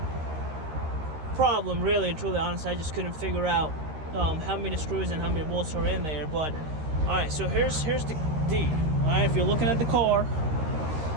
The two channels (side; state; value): left; late; 13 ms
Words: problem, really and truly. Honestly, I just couldn't figure out how many screws and how many bolts are in there. But all right, so here's the deal. All right, if you're looking at the car,